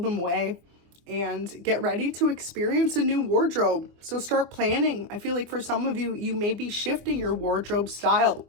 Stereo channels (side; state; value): left; late; 25 ms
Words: away. And get ready to experience a new wardrobe. So start planning. I feel like for some of you, you may be shifting your wardrobe style.